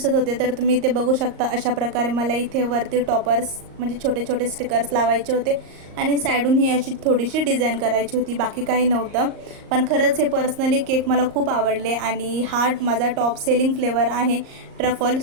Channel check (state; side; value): late; left; 38 ms